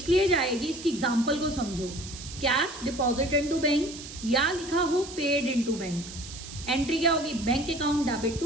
जाएगी, इसकी एग्जांपल को समझो. कैश डिपॉजिट इनटू बैंक या लिखा हो पेड इनटू बैंक. एंट्री क्या होगी? Bank account debit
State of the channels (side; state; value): right; noise; hiss, 13 dB below the sound